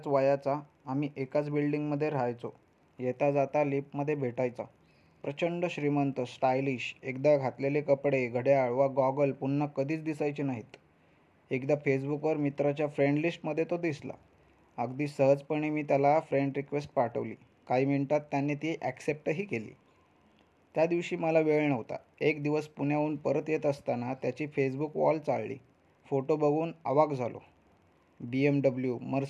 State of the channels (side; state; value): both; identical; correlation 1.00